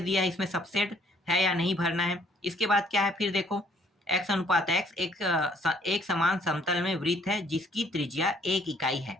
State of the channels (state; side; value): normal; both; correlation 0.63